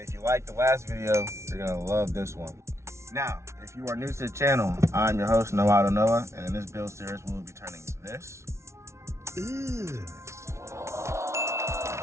if you liked the last video, you're gonna love this one. Now, if you are new to the channel, I'm your host Noah, and in this build series, we will be turning this.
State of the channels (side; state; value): left; late; 0.13 ms